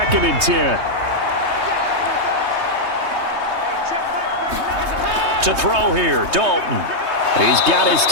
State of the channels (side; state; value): left; late; 3.2 ms